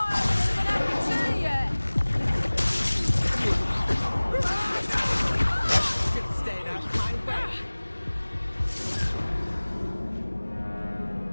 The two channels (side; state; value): both; inverted; correlation -1.00